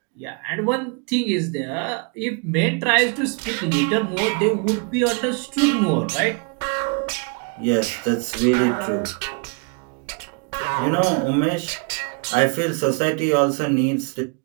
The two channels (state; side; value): quieter; left; 36.3 dB